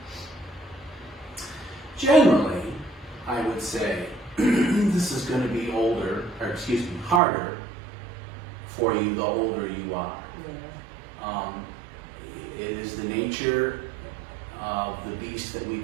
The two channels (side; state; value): left; drops out; at 7.2 s